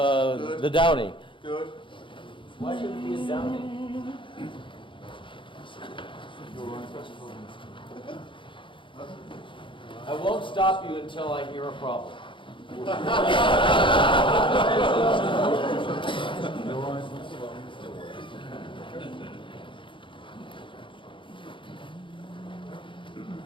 Downy. Good. Why should it be a Downy? I won't stop you until I hear a problem.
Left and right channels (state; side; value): late; right; 0.24 ms